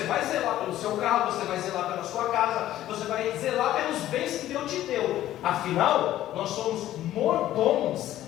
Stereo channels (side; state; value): right; quieter; 13.4 dB